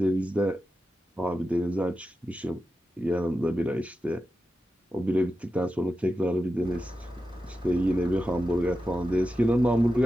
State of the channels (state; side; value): normal; both; correlation 0.91